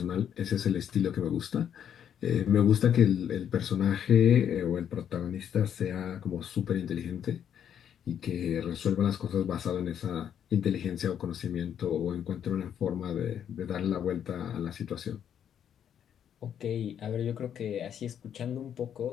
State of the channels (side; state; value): right; quieter; 9.1 dB